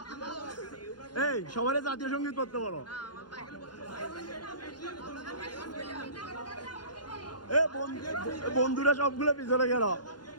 এই সবাই জাতীয় সঙ্গীত করতে বলো। এ বন্ধুরা সবগুলো পিছনে গেল,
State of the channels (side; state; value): right; late; 0.70 ms